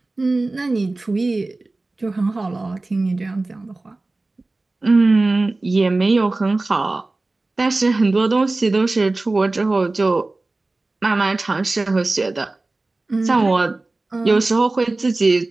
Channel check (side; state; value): left; quieter; 3.2 dB